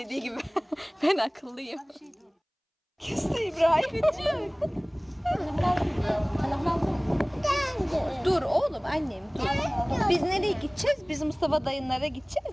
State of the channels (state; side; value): identical; both; correlation 1.00